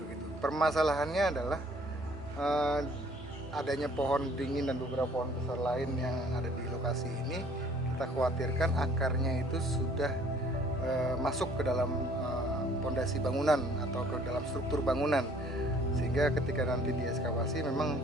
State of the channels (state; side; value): normal; both; correlation 0.57